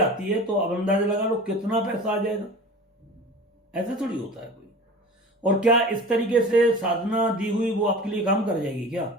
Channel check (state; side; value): normal; both; correlation 0.38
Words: है, तो अब अंदाजा लगा लो कितना पैसा आ जाएगा। ऐसा थोड़ी होता है कोई। और क्या इस तरीके से साधना दी हुई वो आपके लिए काम कर जाएगी क्या?